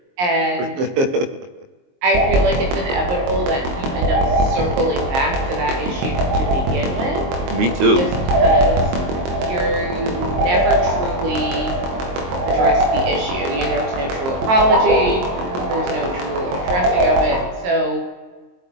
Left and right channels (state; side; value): late; left; 22 ms